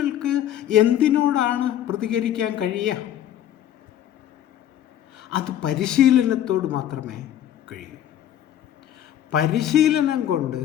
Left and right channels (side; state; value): right; quieter; 11.2 dB